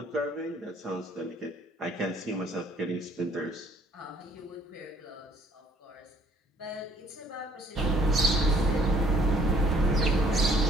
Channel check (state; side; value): normal; both; correlation 0.61